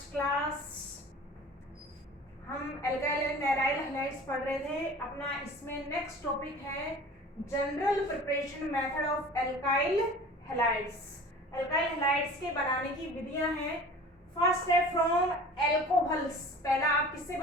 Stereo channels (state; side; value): normal; both; correlation 0.41